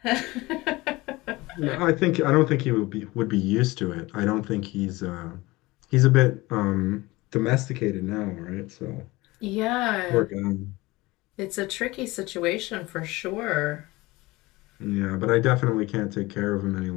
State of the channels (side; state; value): right; quieter; 21.0 dB